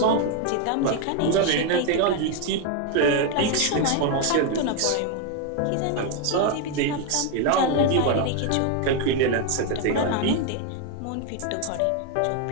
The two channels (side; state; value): both; different; correlation 0.01